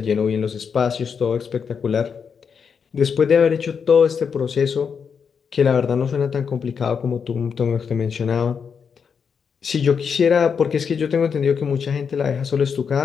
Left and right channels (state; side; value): quieter; right; 6.4 dB